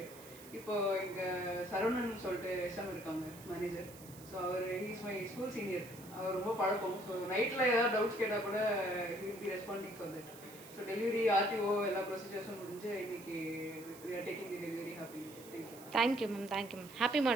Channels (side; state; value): right; noise; hiss, 18 dB below the sound